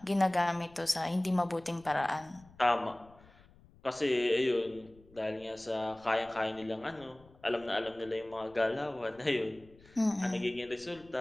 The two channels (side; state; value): left; noise; rumble, 26 dB below the sound